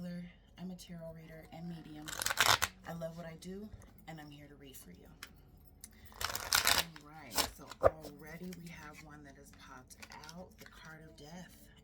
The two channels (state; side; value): identical; both; correlation 1.00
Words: I'm a tarot reader and medium. I love what I do, and I'm here to read for you. All right, so already we have one that has popped out, the card of death.